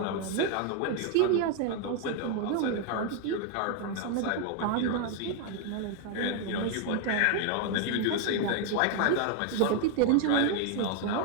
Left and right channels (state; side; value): different; both; correlation 0.01